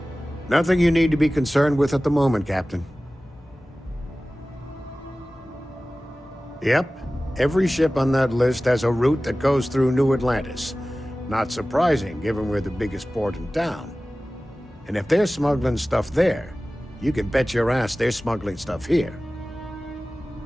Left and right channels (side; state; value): both; normal; correlation 0.97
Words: Nothing you need to be concerned with at the moment, Captain. Yep. Every ship on that list has a route that goes through New Atlantis. Not surprising, given we're the biggest port in town. And if they're smuggling stuff there, you can bet your ass they're smuggling stuff here.